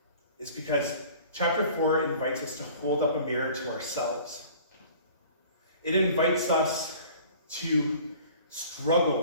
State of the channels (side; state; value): both; inverted; correlation -0.48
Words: is because chapter 4 invites us to hold up a mirror to ourselves. It invites us to